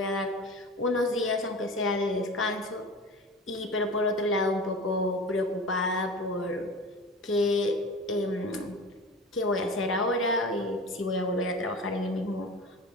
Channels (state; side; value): normal; both; correlation 0.34